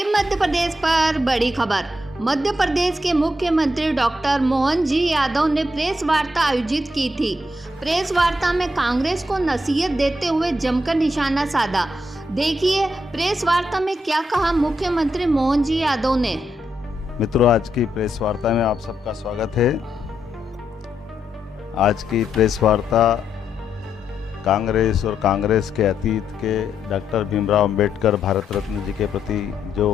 Madhya Pradesh पर बड़ी खबर। मध्य प्रदेश के मुख्यमंत्री डॉक्टर मोहन जी यादव ने प्रेस वार्ता आयोजित की थी। प्रेस वार्ता में कांग्रेस को नसीहत देते हुए जमकर निशाना साधा। देखिए प्रेस वार्ता में क्या कहा मुख्यमंत्री मोहन जी यादव ने। मित्रों, आज की प्रेस वार्ता में आप सबका स्वागत है। आज की प्रेस वार्ता कांग्रेस और कांग्रेस के अतीत के डॉक्टर भीमराव अंबेडकर भारत रत्न जी के प्रति जो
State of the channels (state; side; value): normal; both; correlation 0.80